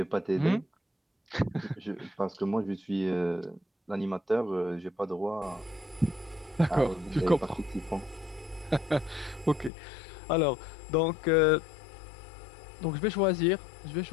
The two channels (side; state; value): right; drops out; at 9.7 s